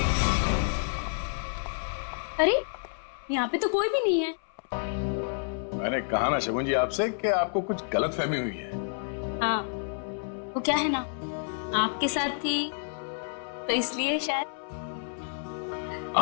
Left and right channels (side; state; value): right; silent; 58 dB below the other